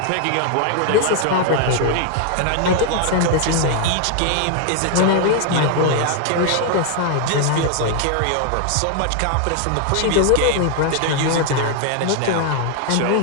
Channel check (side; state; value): both; different; correlation 0.00